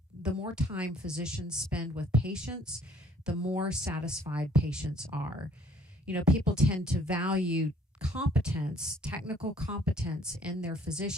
physicians spend with patients, the more satisfied patients are. People tend to value competence, technical competence in their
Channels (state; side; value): normal; both; correlation 0.59